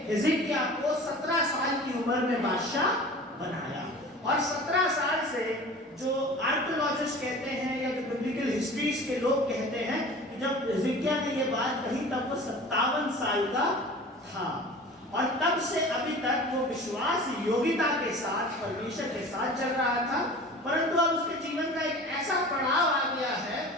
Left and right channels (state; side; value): normal; both; correlation 0.40